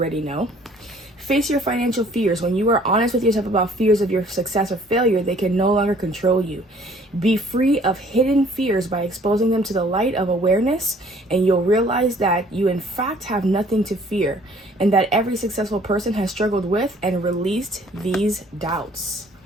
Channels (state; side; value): normal; both; correlation 0.57